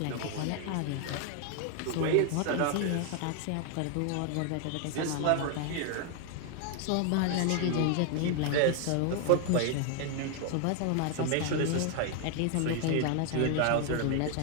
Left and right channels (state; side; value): different; both; correlation 0.00